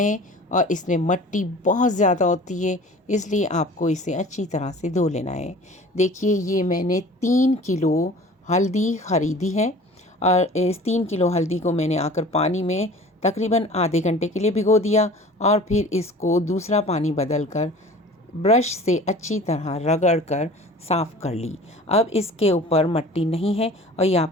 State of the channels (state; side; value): normal; both; correlation 0.44